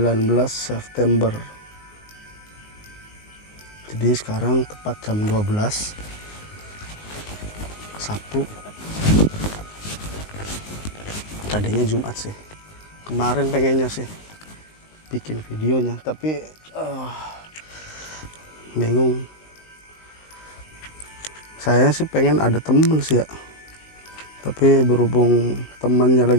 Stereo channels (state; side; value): late; right; 19 ms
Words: September. Jadi sekarang tepat jam 12 Sabtu. Tadinya Jumat sih, kemarin pengennya sih bikin videonya, tapi bingung. Saya sih pengen ada temen sih ya, tapi berhubung temannya